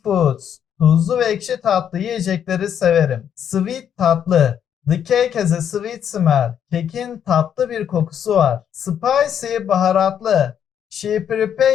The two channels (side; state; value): right; quieter; 8.9 dB